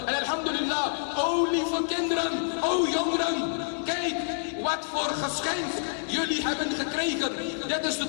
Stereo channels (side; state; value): right; silent; digital silence